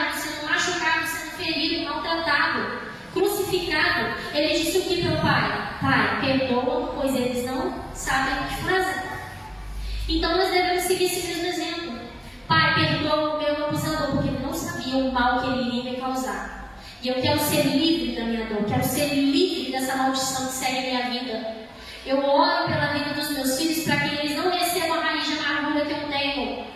sendo machucado, sendo ferido, maltratado, crucificado, ele disse o que para o Pai? Pai, perdoa, pois eles não sabem o que fazem. Então nós devemos seguir esse mesmo exemplo. Pai, perdoa o meu abusador, porque ele não sabia o mal que ele iria me causar. E eu quero ser livre da minha dor, quero ser livre dessa maldição que segue a minha vida. Eu oro pela vida dos meus filhos para que eles não recebam a raiz de amargura que eu tenho,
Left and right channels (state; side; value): identical; both; correlation 1.00